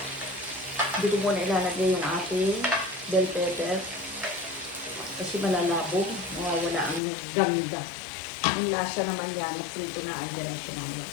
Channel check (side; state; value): right; drops out; at 7.0 s